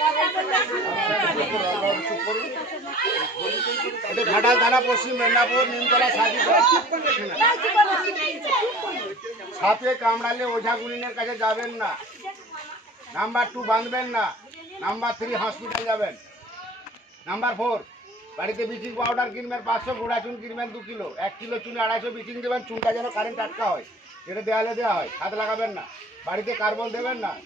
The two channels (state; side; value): normal; both; correlation 0.44